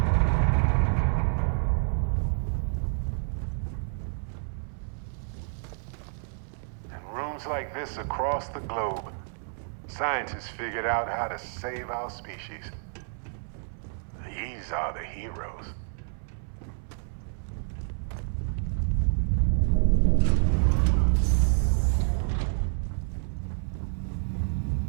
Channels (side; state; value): left; silent; 59 dB below the other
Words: Like this across the globe, scientists figured out how to save our species. These are the heroes.